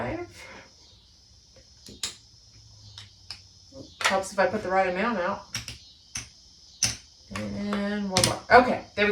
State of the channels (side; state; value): both; identical; correlation 1.00